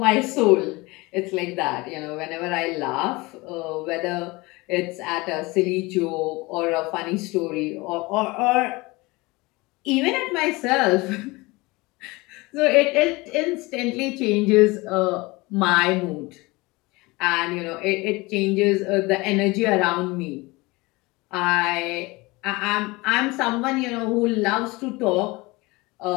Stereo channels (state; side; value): quieter; right; 23.2 dB